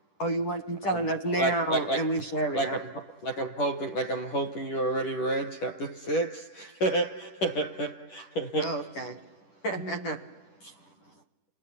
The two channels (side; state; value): right; late; 10 ms